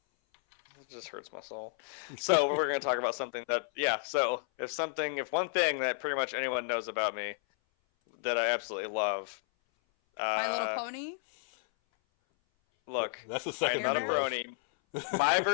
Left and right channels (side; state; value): right; silent; 56 dB below the other